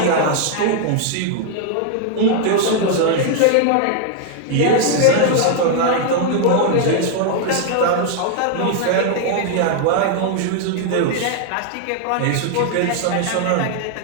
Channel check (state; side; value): different; both; correlation 0.00